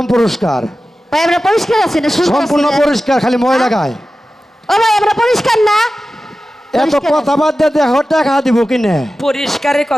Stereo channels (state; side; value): normal; both; correlation 0.94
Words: পুরস্কার ভাই আমরা পরিষ্কার আছি না? শুনতে সম্পূর্ণ আছি না? পরিষ্কার খালি মহিলা গায় ও ভাই আমরা পরিষ্কার না? এত পরিষ্কার কথা বাদ দিয়ে দেখো টাকা দিব কিনে পরিষ্কারের